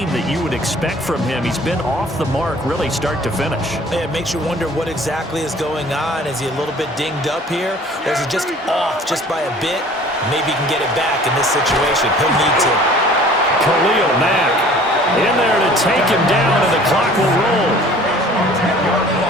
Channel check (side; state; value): both; normal; correlation 0.50